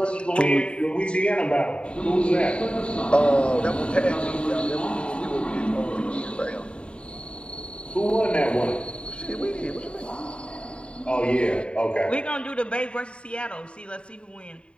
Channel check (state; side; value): late; right; 0.055 ms